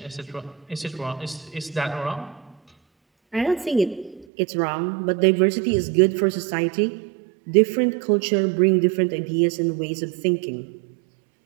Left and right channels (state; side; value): drops out; left; at 4.2 s